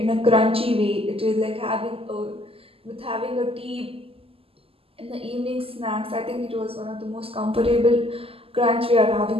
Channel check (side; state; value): left; late; 0.28 ms